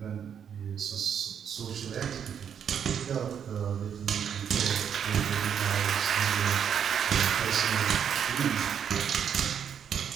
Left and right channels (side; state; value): left; quieter; 8.1 dB